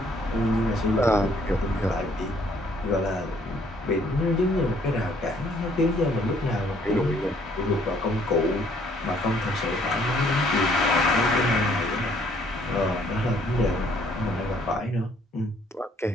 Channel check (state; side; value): normal; both; correlation 0.63